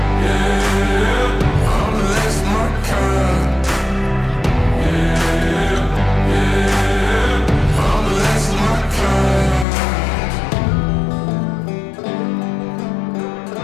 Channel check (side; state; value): right; drops out; at 9.7 s